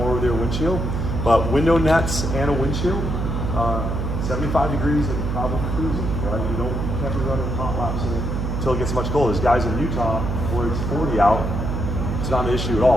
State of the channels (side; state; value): right; noise; hum, 2 dB below the sound